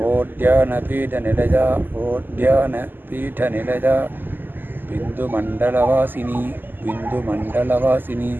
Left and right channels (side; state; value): left; late; 0.091 ms